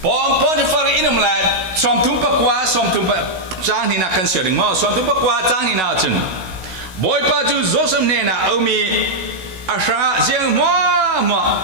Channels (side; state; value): left; late; 16 ms